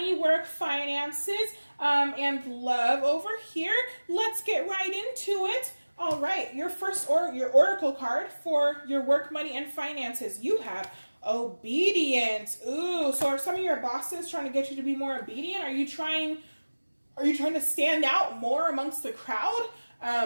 work, finances, and love over here. Let's get right into it. All right, your oracle card for your work, money, and finances. You have obedience. Ooh, so are some of your bosses trying to get you to be more obedient? Are you trying to stand out more amongst the crowd?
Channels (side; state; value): both; inverted; correlation -1.00